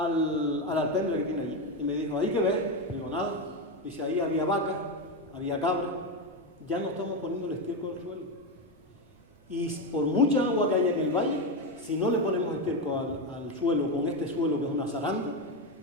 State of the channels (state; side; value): normal; both; correlation 0.12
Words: alpendre que tiene allí y me dijo, ¿ahí qué ves? Digo, nada. Dice, ahí había vacas, había cabras, ya no estamos poniendo el estiércol al suelo. Y por mucha agua que haya en el valle, si no le ponemos estiércol al suelo, con este suelo que es una zaranda,